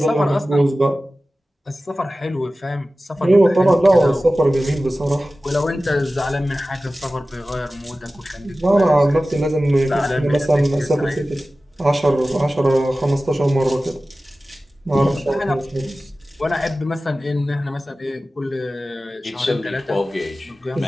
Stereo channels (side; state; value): both; normal; correlation 0.96